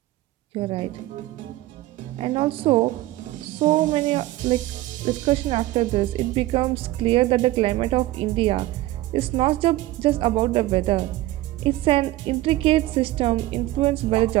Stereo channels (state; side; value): quieter; left; 16.8 dB